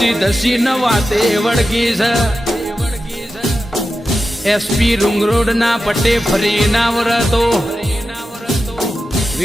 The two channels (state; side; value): normal; both; correlation 0.91